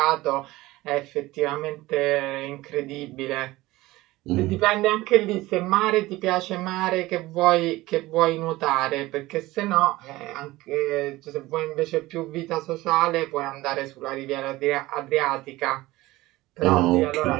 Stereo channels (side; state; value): left; quieter; 18.7 dB